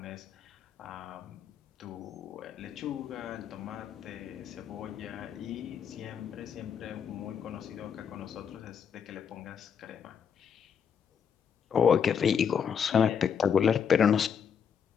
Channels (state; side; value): quieter; right; 7.4 dB